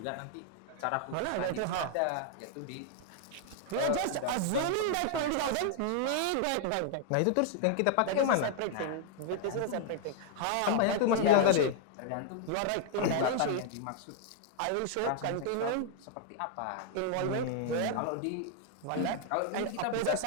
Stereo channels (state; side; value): different; both; correlation 0.00